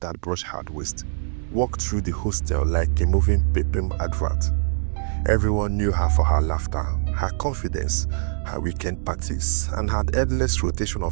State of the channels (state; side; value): silent; left; digital silence